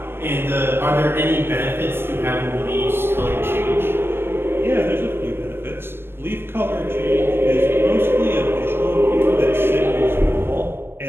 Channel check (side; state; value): left; late; 0.11 ms